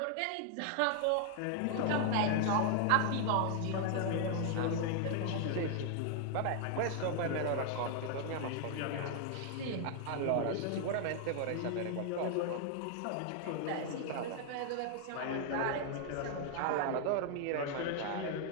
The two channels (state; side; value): different; both; correlation 0.00